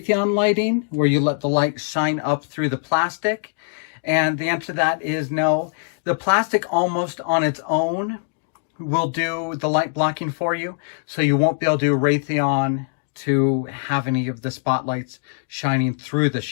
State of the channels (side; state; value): right; silent; digital silence